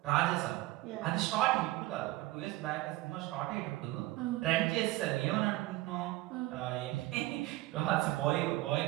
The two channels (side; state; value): left; quieter; 18.3 dB